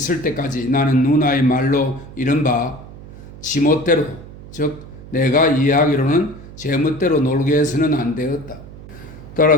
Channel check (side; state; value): right; noise; hum, 16 dB below the sound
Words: 때까지 나는 누나의 말로 이른바 지멋대로, 즉 내가 이해하기로는 제 멋대로 놀게 해서는 안 되었다.